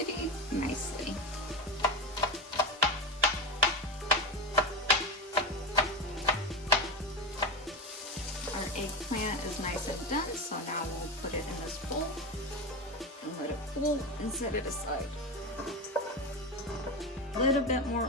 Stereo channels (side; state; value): both; normal; correlation 0.18